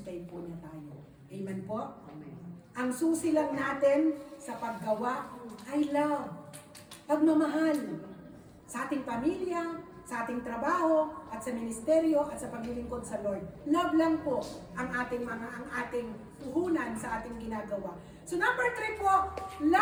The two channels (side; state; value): both; identical; correlation 1.00